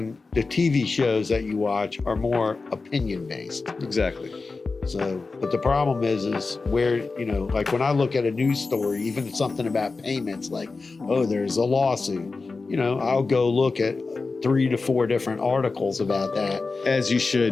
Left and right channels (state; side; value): quieter; right; 4.0 dB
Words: the TV shows that you watch are more opinion based. Exactly. So, but the problem is where, like when I look at a news story, even something about payments, like, oh, there's a lawsuit, I'll go look at 3 to 4 different articles about that. As you